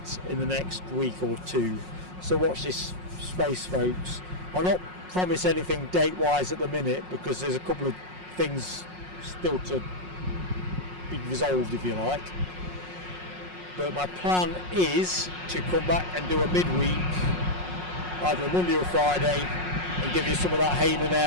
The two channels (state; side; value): late; left; 5.5 ms